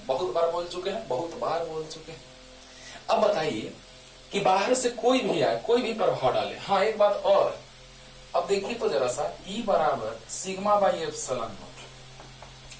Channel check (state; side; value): identical; both; correlation 1.00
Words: बहुत बार बोल चुके हैं, बहुत बार बोल चुके हैं। अब बताइए कि बाहर से कोई भी आए, कोई भी प्रभाव डाले। हाँ, एक बात और, अब देखिए तो जरा सा, E बराबर सिग्मा बाई एप्सिलॉन नॉट।